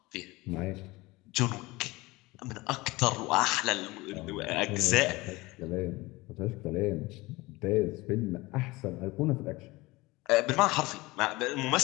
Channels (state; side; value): quieter; right; 21.8 dB